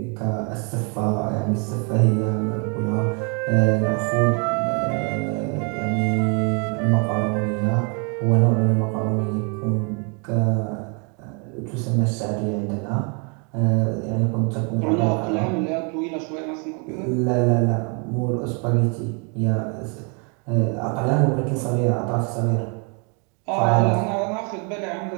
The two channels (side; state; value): left; quieter; 36.1 dB